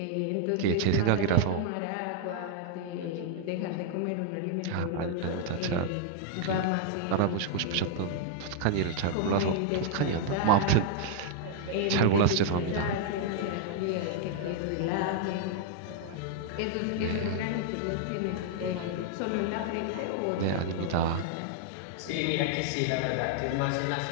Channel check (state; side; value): different; both; correlation 0.00